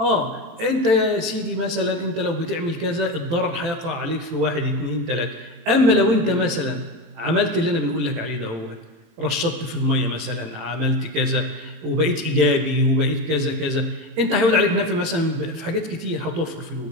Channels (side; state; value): left; late; 18 ms